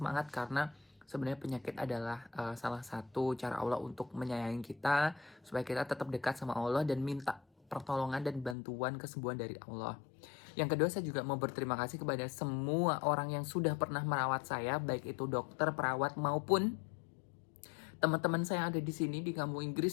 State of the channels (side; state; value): right; drops out; at 8.6 s